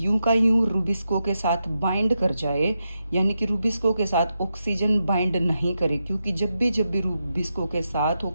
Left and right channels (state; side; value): inverted; both; correlation -0.86